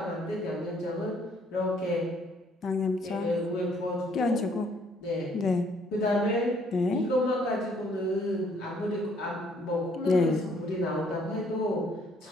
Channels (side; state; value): both; normal; correlation 0.64